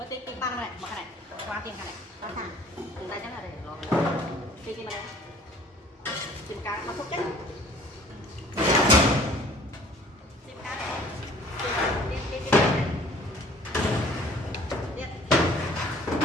tiền băng này mà cái này qua tiền cái này qua thằng từ đây chắc là để lo tiền này tiền cá nó phốt chết tiền cá tiền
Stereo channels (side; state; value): both; normal; correlation 0.52